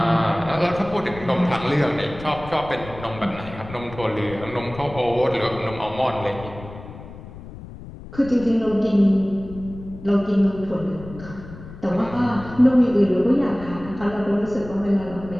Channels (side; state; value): left; noise; rumble, 15 dB below the sound